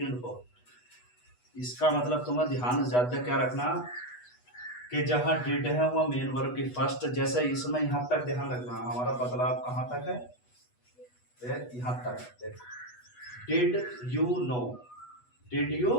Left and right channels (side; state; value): right; late; 8.2 ms